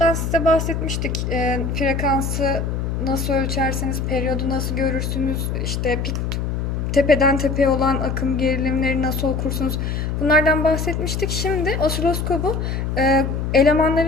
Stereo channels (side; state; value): left; noise; hum, 2 dB below the sound